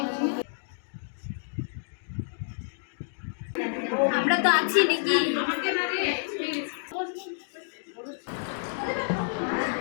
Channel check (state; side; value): silent; right; digital silence